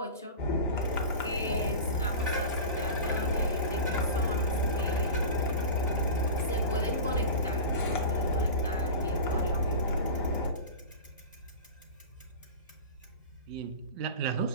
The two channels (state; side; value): inverted; both; correlation -0.30